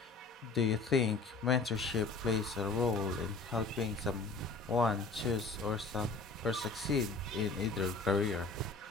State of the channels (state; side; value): quieter; right; 4.0 dB